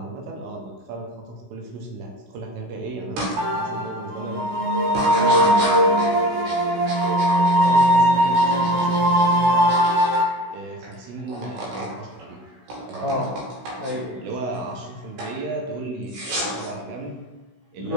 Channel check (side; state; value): left; late; 16 ms